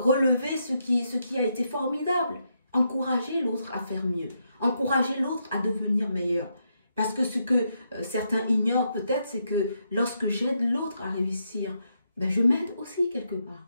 ce qui a été formidable? Encourager l'autre à faire mieux. Encourager l'autre à devenir meilleur. Parce que ce que certains ignorent peut-être, c'est que lorsque j'aide l'autre à réussir, ben je m'aide aussi quelque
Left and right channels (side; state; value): both; inverted; correlation -0.80